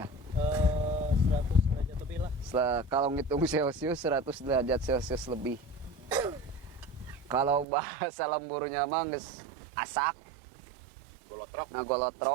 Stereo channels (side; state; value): left; drops out; at 7.7 s